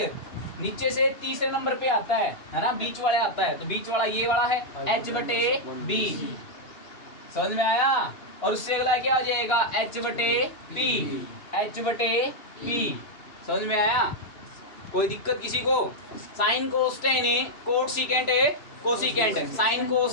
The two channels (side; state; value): right; late; 3.0 ms